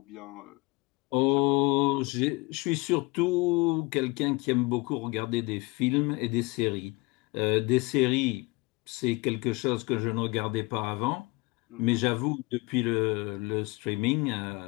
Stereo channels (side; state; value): right; quieter; 24.8 dB